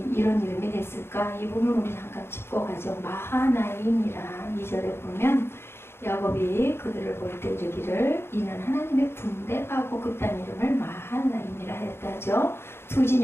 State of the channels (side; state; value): right; late; 0.12 ms